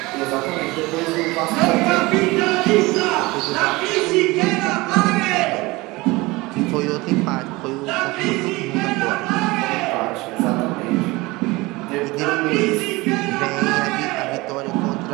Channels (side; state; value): left; quieter; 22.1 dB